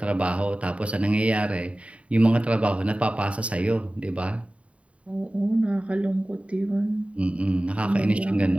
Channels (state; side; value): late; left; 0.064 ms